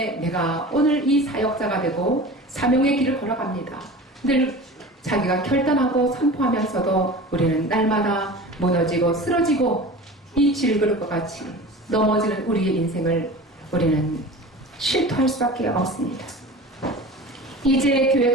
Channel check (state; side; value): normal; both; correlation 0.36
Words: 내가 오늘 이 사역자가 되고 사명의 길을 걸어갑니다. 늘 자기가 결단하고 선포하면서도 우리는 날마다 무너지고 쓰러지고 이 질그릇과 같이 넘어지는 우리의 인생을 우리는 실토할 수밖에 없습니다. 이제